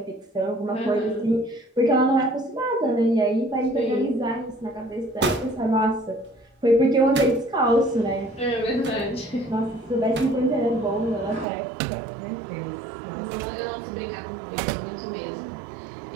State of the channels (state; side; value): drops out; left; at 11.5 s